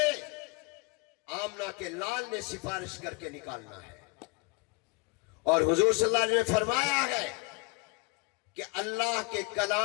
آمنہ کے لال نے سفارش کر کے نکالنا ہے۔ اور حضور صلی اللہ علیہ وسلم نے فرمایا ہے کہ اللہ کے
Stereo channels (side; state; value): right; quieter; 27.8 dB